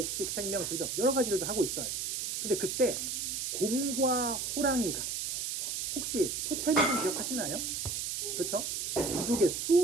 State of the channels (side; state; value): right; noise; hiss, 2 dB below the sound